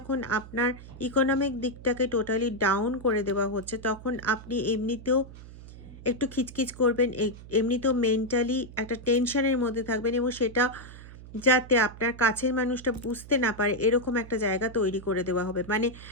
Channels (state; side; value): noise; right; hum, 16 dB below the sound